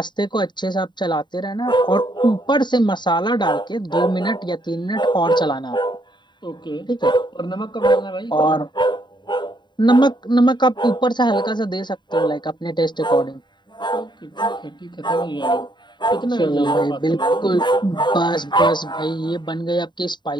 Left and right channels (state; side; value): late; right; 0.22 ms